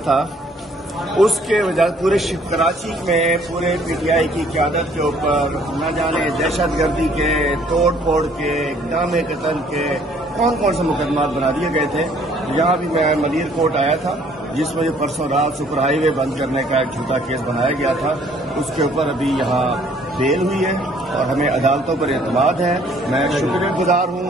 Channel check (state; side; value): normal; both; correlation 0.60